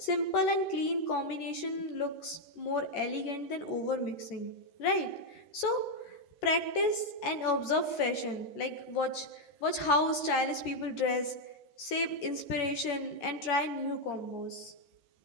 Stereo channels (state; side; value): late; right; 13 ms